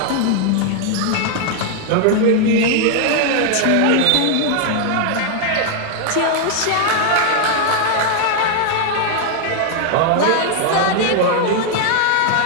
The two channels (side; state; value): both; different; correlation 0.00